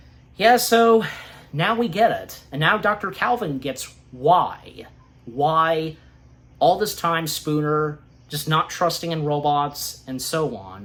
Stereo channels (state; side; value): identical; both; correlation 1.00